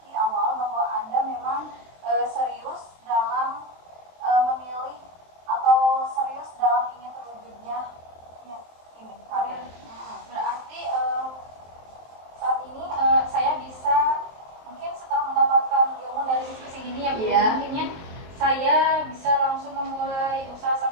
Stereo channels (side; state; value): left; late; 23 ms